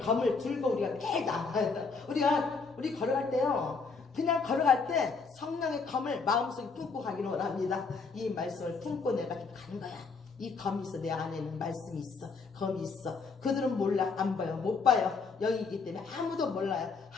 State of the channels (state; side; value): quieter; right; 4.7 dB